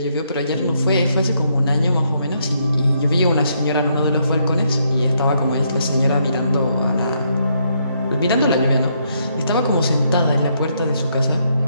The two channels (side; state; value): both; inverted; correlation -0.74